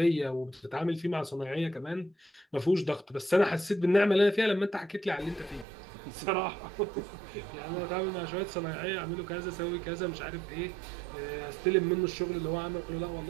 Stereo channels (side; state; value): left; drops out; at 5.7 s